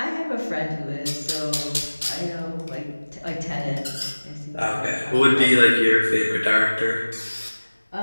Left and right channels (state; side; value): inverted; both; correlation -1.00